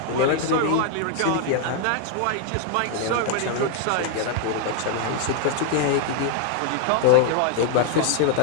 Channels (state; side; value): different; both; correlation 0.00